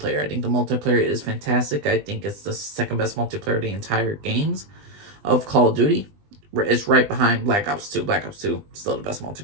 I think the multiplayer is fantastic. I think it's the second best multiplayer of the entire games of Call of Duty. It's right behind Black Ops 2. Black Ops 2 still the best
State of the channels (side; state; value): left; late; 20 ms